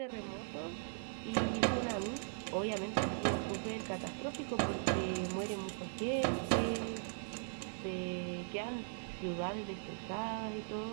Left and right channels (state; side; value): silent; left; 52 dB below the other